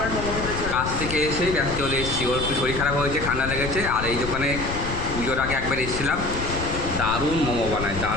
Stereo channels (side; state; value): left; noise; rumble, 7 dB below the sound